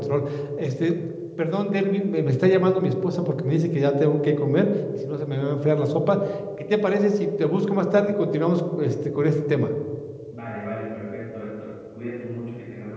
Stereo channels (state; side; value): identical; both; correlation 1.00